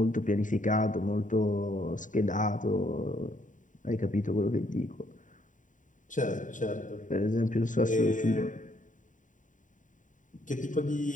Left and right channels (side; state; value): right; late; 0.37 ms